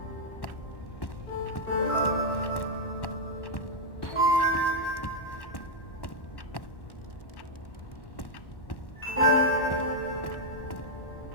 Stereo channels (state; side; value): late; right; 1.1 ms